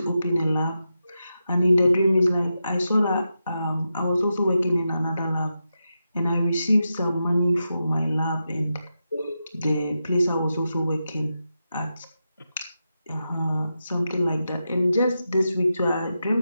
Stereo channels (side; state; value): both; inverted; correlation -0.88